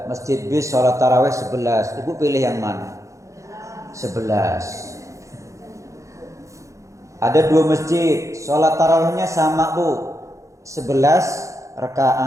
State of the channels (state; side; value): late; left; 0.15 ms